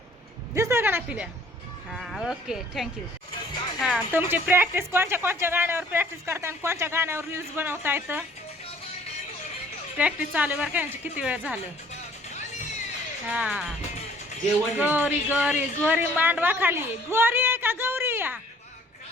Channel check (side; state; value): both; normal; correlation 0.57